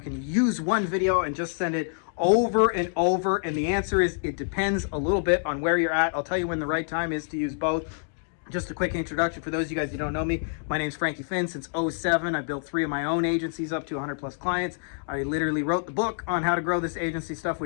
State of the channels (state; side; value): silent; right; digital silence